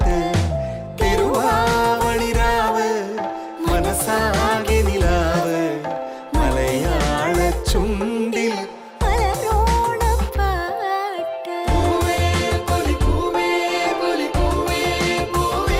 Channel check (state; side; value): identical; both; correlation 1.00